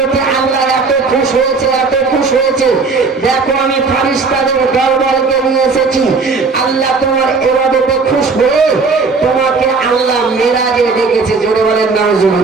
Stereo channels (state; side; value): quieter; left; 4.4 dB